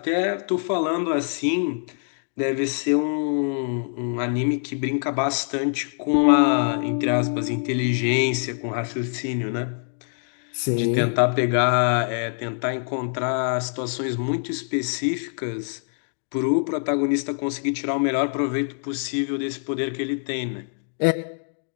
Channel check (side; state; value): right; silent; digital silence